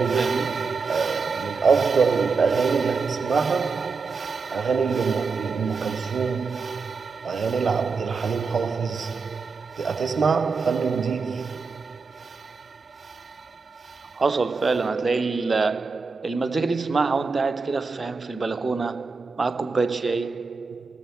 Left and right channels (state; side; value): quieter; left; 4.7 dB